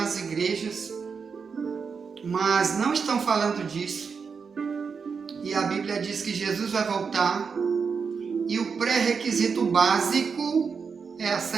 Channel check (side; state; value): left; quieter; 5.7 dB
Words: igrejas, mas não estão falando disso. E a Bíblia diz que Jesus vai voltar e o pré-requisito básico é a